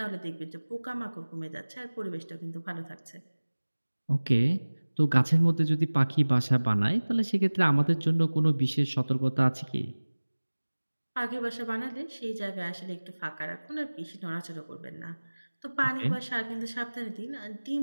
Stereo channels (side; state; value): both; inverted; correlation -1.00